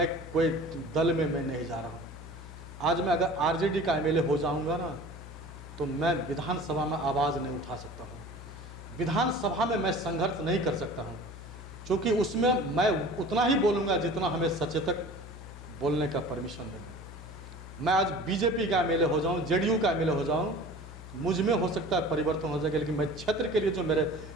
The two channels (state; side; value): noise; left; hum, 14 dB below the sound